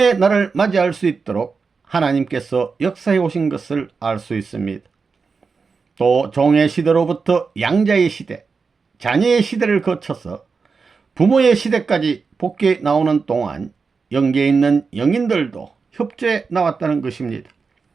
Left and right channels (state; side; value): quieter; left; 4.9 dB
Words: 날을 맞이할 수 있도록 하나님께서 역사해 오신 것을 알 수 있습니다. 또 종의 시대로부터 양자의 시대, 자녀의 시대를 거쳐서 부모의 시대까지 복귀해 나오는 동안 영계에 있는 영인들도 협조해 나왔다는 것입니다.